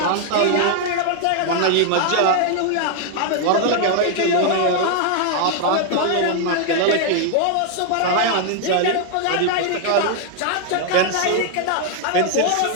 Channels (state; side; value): different; both; correlation 0.00